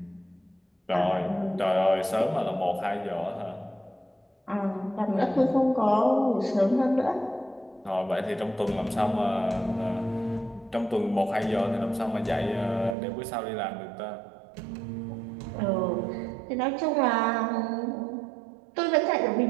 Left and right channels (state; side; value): drops out; left; at 13.0 s